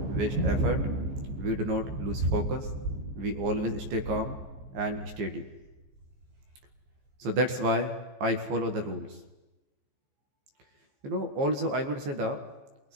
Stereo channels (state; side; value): late; left; 15 ms